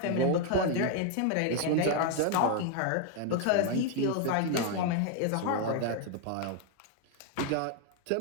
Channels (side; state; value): both; different; correlation 0.01